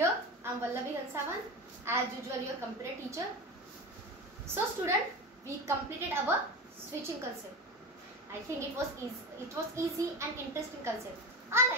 I am Vallavi Hansavan, as usual your computer teacher. So student, we completed our switching concept. I think it was easy and interesting concept. I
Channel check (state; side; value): normal; both; correlation 0.24